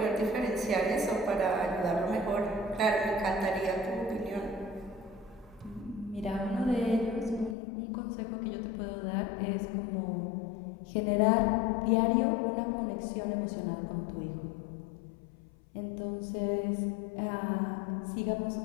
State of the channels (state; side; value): drops out; right; at 7.6 s